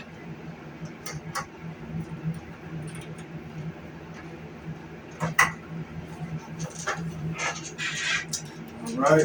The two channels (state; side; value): identical; both; correlation 1.00